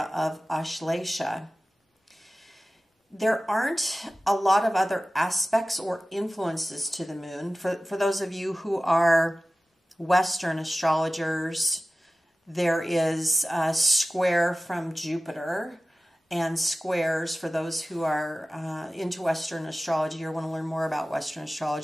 of Ashlesha. There aren't a lot of other aspects or influences to the moon. For those of you who are Western astrologers, there is a square from Jupiter, and squares, for those who are into Western astrology or want to learn more about Western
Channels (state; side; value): normal; both; correlation 0.96